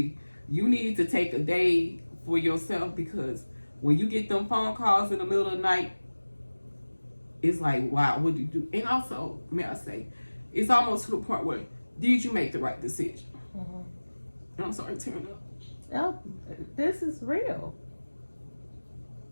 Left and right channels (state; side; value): inverted; both; correlation -1.00